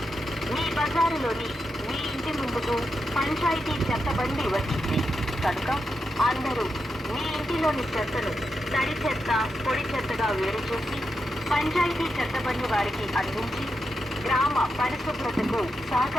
మీ బజారులోని మీ ఇంటి ముందుకు పంచాయతీ చెత్తబండి వచ్చింది కనుక అందరూ మీ ఇంటిలోని చెత్తను తడి చెత్త పొడి చెత్తగా వేరు చేసి పంచాయతీ చెత్తబండి వారికి అందించి గ్రామ పరిశుభ్రతకు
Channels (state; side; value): normal; both; correlation 0.86